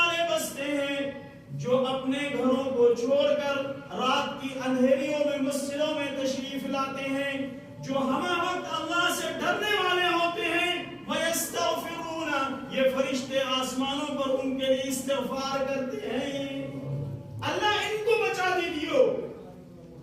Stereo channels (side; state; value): both; identical; correlation 1.00